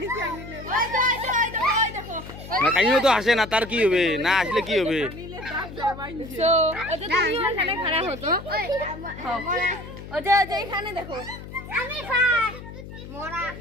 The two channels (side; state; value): left; noise; hum, 13 dB below the sound